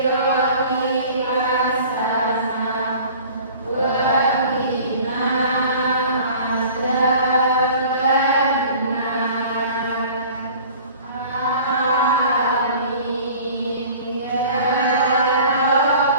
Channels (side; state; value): both; inverted; correlation -0.45